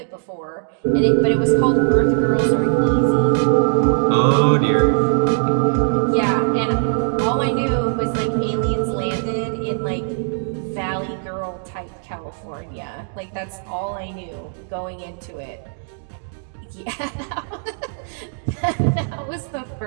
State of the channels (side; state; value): left; silent; 64 dB below the other